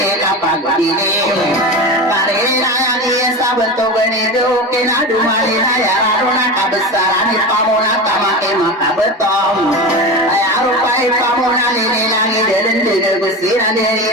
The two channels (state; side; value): normal; both; correlation 0.25